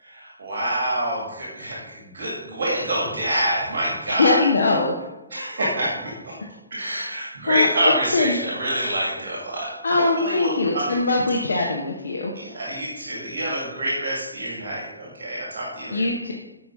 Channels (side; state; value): both; inverted; correlation -0.68